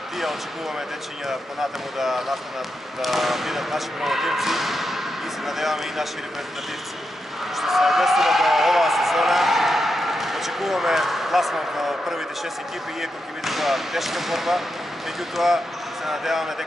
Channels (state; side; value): normal; both; correlation 0.86